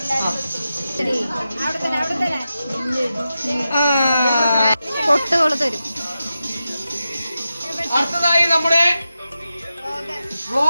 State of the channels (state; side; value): inverted; both; correlation -0.91